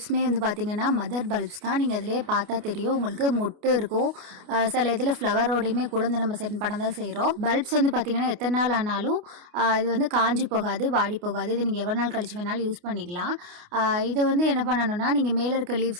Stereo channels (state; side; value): late; left; 28 ms